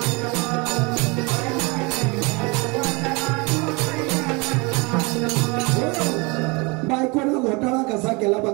बायकोनं घोटाळा कसा केला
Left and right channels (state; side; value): quieter; left; 28.1 dB